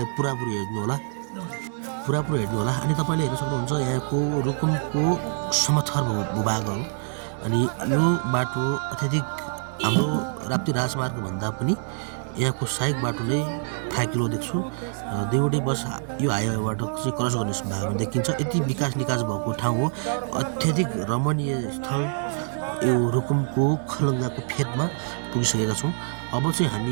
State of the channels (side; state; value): left; silent; 61 dB below the other